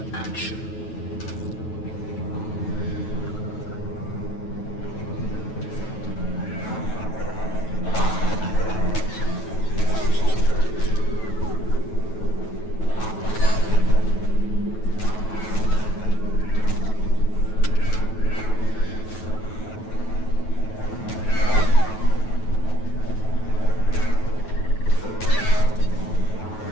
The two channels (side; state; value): right; late; 9.2 ms